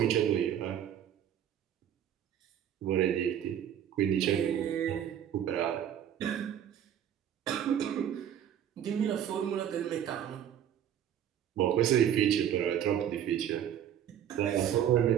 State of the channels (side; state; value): left; quieter; 9.9 dB